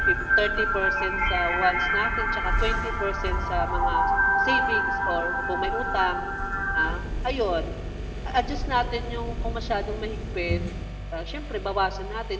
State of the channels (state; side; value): identical; both; correlation 1.00